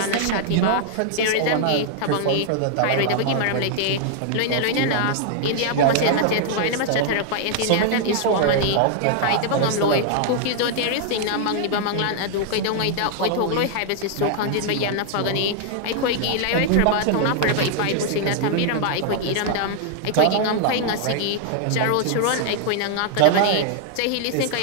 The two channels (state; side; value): different; both; correlation 0.00